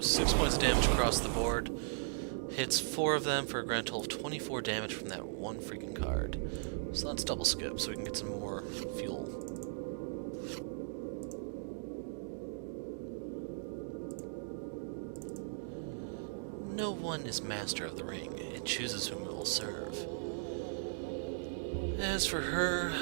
6 points of damage across the board. Hits 4 of them for a grand total of 24 damage from that one freaking card. So let's double skip so we can get some more fuel. No one is master of the ring. It chooses whom it will serve. As for her,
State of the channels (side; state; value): left; silent; digital silence